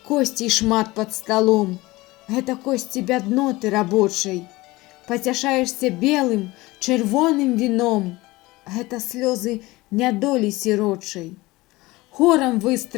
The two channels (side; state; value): right; quieter; 20.5 dB